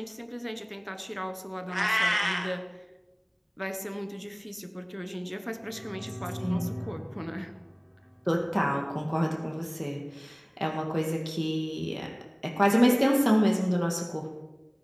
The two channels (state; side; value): identical; both; correlation 1.00